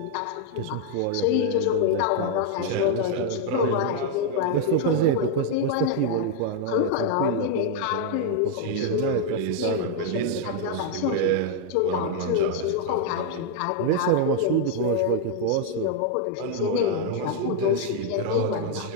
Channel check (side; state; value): both; different; correlation 0.00